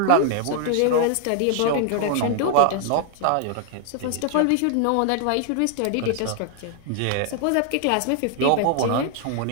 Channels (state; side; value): different; both; correlation 0.00